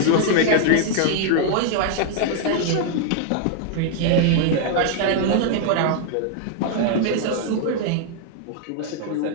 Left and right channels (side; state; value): both; different; correlation 0.00